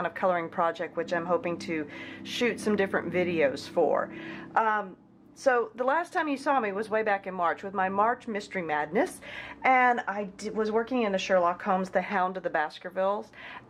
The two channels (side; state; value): both; identical; correlation 1.00